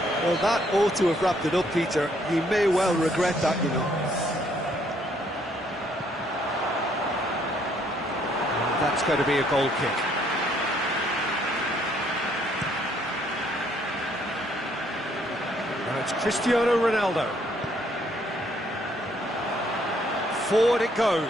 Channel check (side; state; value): both; normal; correlation 0.67